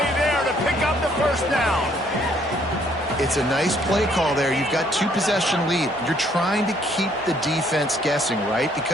there to pick up the first down. It's a nice play call there. You've got 2-possession lead. You're trying to keep the defense guessing, right?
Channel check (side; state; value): both; normal; correlation 0.65